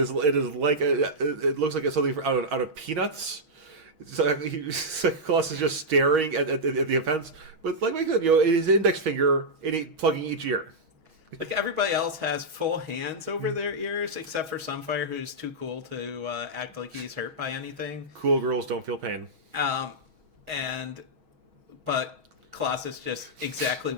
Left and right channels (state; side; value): late; left; 6.3 ms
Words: like it looks like it's something out of Peanuts. Colossus just staring at the offense with, like I said, his index finger plugging each ear. Like, everybody else has full hands over their ears, except for Sunfire, who's too cool to act like he's hurt by anything. Cool girls don't feel pain. Um, but Colossus just exactly